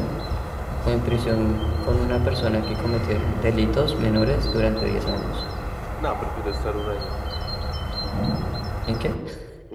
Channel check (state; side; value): identical; both; correlation 1.00